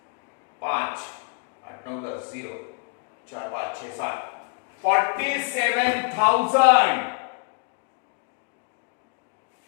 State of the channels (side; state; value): right; quieter; 35.7 dB